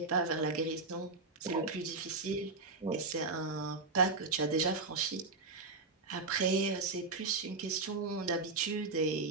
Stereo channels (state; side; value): quieter; left; 3.8 dB